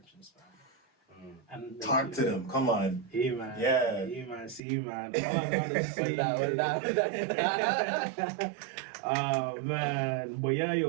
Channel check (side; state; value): left; drops out; at 4.6 s